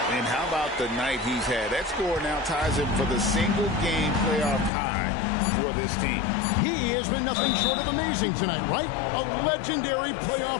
And how about the night he's had? That score now ties him for the single-game playoff high for this team. He has been nothing short of amazing tonight, right? A legendary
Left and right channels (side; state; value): right; drops out; at 4.7 s